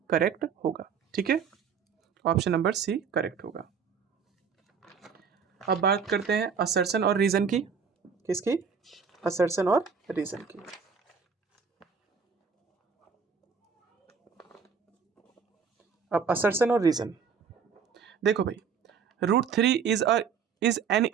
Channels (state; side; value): quieter; left; 6.2 dB